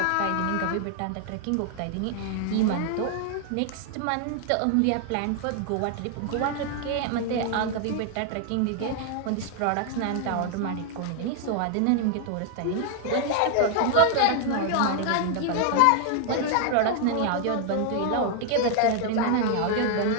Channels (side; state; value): both; different; correlation 0.00